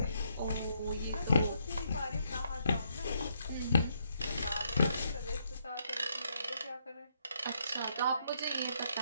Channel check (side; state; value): both; inverted; correlation -0.74